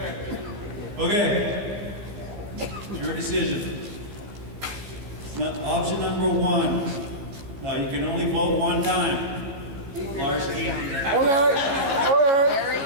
okay. It's your decision. Option number one. Now you can only vote one time. Larsky.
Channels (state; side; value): late; left; 14 ms